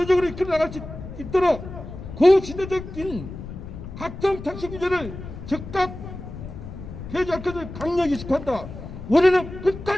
이끌어 나갈 수 있도록 고시대적인 각종 택시 규제를 즉각 폐지할 것을 강력히 촉구한다. 우리는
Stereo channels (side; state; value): left; noise; rumble, 11 dB below the sound